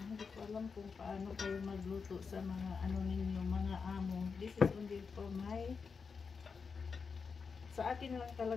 ko alam kung paano kayo magluto sa mga ninyo, mga amo. This is only for sa akin lang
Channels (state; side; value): quieter; right; 5.4 dB